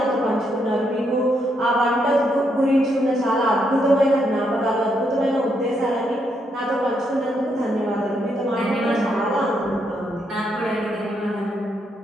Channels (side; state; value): both; normal; correlation 0.77